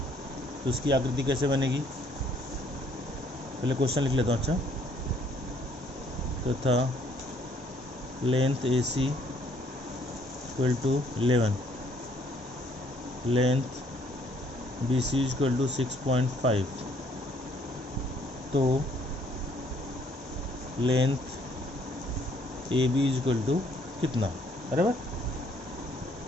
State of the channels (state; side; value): normal; both; correlation 0.64